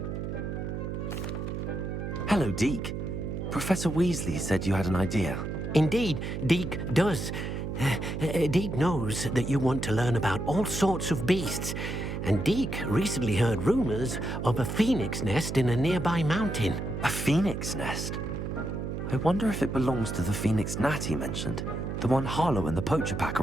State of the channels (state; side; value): noise; right; hum, 4 dB below the sound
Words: Hello, Deke. Professor Weasley said you had an idea. Indeed, Deke does. Deke knows that you want to learn about all sorts of beasts, and Deke recently heard rumors of a phoenix nest in a nearby mountain. A phoenix nest? I wonder if it belongs to the phoenix gnat he mentioned, the one Harlow and the poacher pack